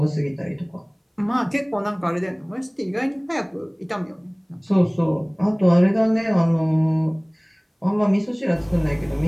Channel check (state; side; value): identical; both; correlation 1.00